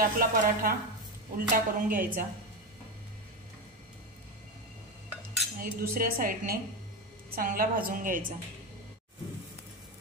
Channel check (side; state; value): both; normal; correlation 0.16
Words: पराठा उलटा करून घ्यायचा आणि दुसऱ्या साइडने चांगला भाजून घ्यायचा।